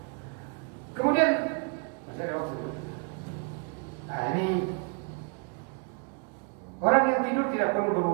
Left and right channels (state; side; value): quieter; left; 37.1 dB